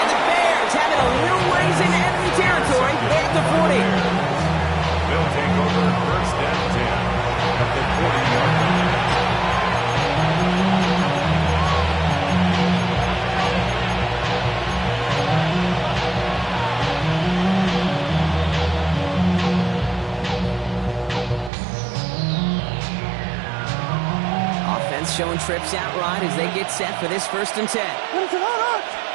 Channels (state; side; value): drops out; left; at 21.5 s